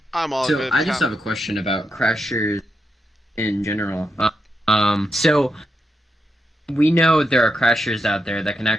I'm all So good. I just have a question about crashers in general. So we know there are crashers out there that can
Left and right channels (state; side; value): normal; both; correlation 0.85